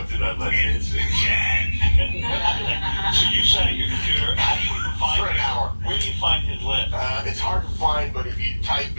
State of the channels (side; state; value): both; inverted; correlation -1.00